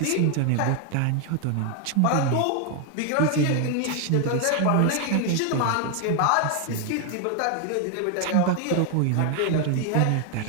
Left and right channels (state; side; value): different; both; correlation 0.01